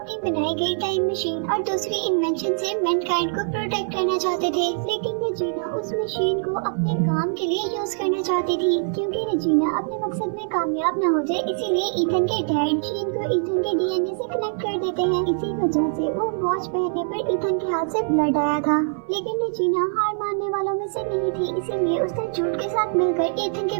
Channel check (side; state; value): left; silent; 58 dB below the other